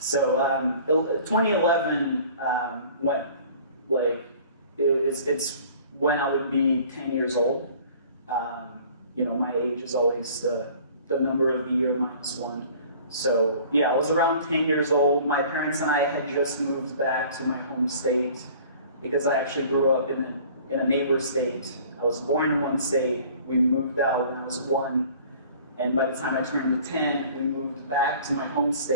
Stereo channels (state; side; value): inverted; both; correlation -0.49